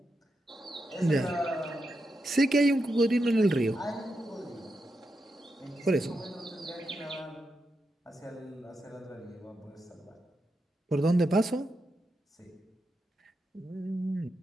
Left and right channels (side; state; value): both; normal; correlation 0.86